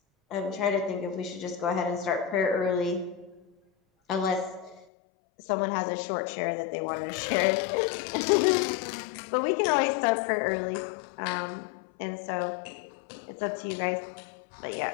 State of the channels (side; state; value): right; drops out; at 4.9 s